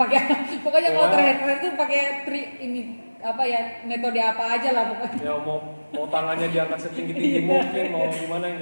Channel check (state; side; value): inverted; both; correlation -1.00